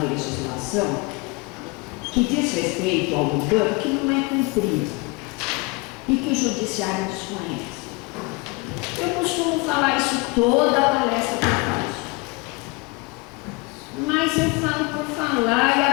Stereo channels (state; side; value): quieter; right; 26.3 dB